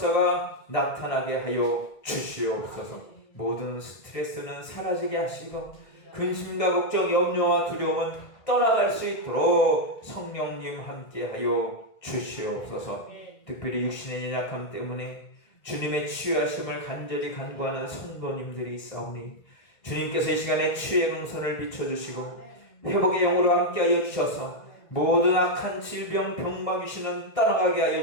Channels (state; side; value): late; right; 1.8 ms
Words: 나타나게 하여 주시옵소서. 모든 스트레스는 사라지게 하시고 근심과 걱정, 염려와 두려움은 떠나갈 수 있도록 성령님 함께하여 주시옵소서. 특별히 육신의 연약함 때문에 주님의 치유하심을 간절히 간구하는 성도님들이 있사오니 주님께서 이 시간에 치유의 능선을 비춰주시고 회복의 영으로 함께하여 주셔서 모든 악한 질병, 병마 귀신은 떠나가게